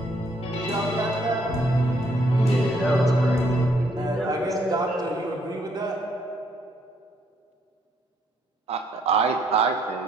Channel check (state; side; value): normal; both; correlation 0.69